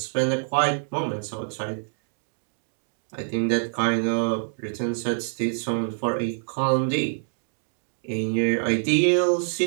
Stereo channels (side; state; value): left; silent; digital silence